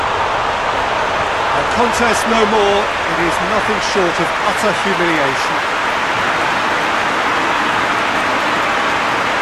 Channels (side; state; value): both; identical; correlation 1.00